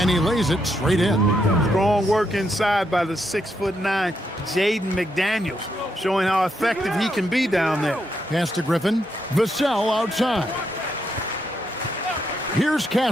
he lays it straight in. Strong work inside by the 6'9" Jaden McDaniels, showing how effective he can be down there. Pass to Griffin. Vassell outside. Here's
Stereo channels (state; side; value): normal; both; correlation 0.79